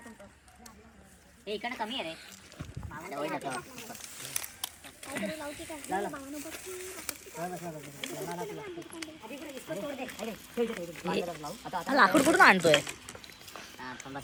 इकडे कमी आहे रे. लाकूड कुठून आणतोय?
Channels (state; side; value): identical; both; correlation 1.00